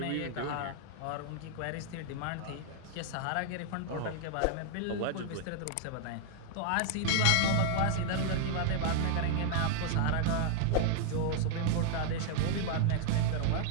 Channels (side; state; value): both; different; correlation -0.01